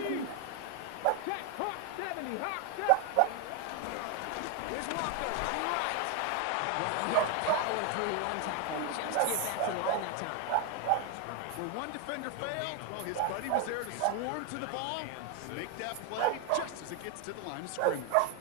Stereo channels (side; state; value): both; different; correlation 0.01